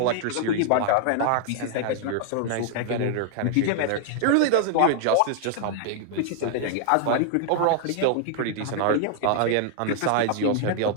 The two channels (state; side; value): different; both; correlation 0.00